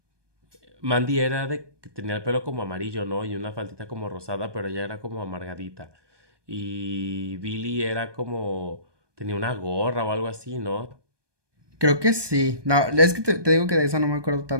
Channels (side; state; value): left; late; 1.2 ms